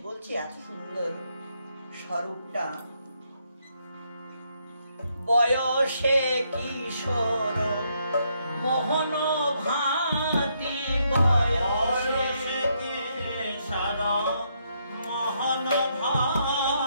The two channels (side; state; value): both; inverted; correlation -0.75